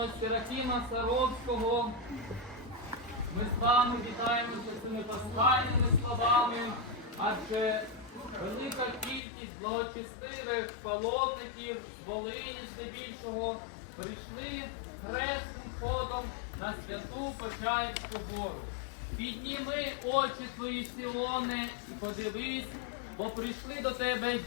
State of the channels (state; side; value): drops out; right; at 9.2 s